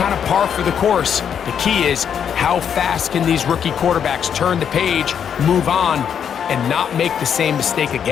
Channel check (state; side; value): quieter; right; 8.1 dB